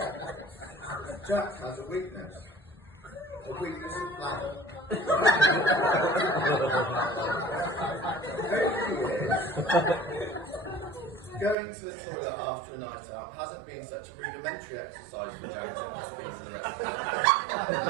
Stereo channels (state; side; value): drops out; left; at 11.6 s